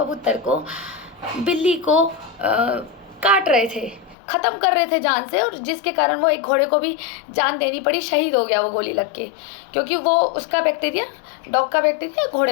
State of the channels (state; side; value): drops out; right; at 4.2 s